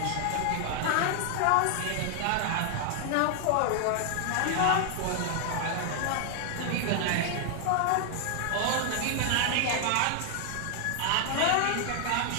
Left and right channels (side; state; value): both; different; correlation 0.00